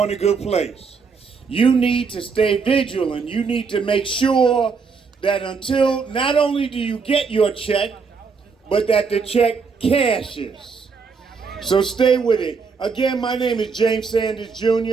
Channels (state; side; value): quieter; left; 5.2 dB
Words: in a good place. You need to stay vigilant. You need to make sure that until not only do you get your check, but that the check cashes. So stay with it. Again, my name is James Sanders